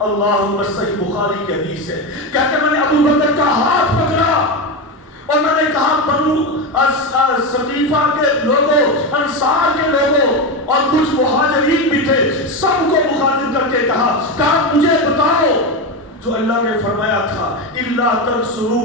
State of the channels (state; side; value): normal; both; correlation 0.16